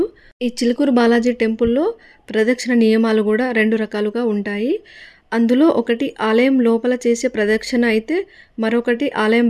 ఈ చిలుకూరు బాలాజీ టెంపుల్లో ప్రదక్షిణ నియమాలు కూడా 2 రకాలుగా ఉంటాయి. అందులో ఒకటి ఆలయం లోపల చేసే ప్రదక్షిణ అయితే మరొకటి ఆలయం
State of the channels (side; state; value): both; identical; correlation 1.00